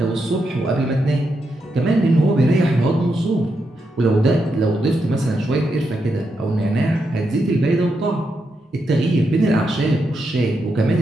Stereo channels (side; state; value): both; normal; correlation 0.83